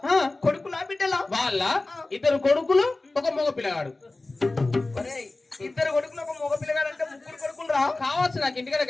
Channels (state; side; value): quieter; right; 3.1 dB